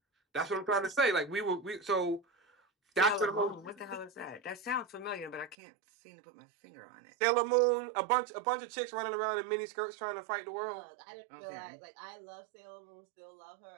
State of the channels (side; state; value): left; drops out; at 5.6 s